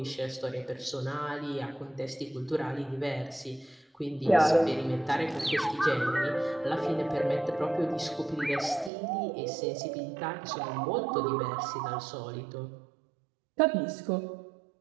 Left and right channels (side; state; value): left; drops out; at 8.9 s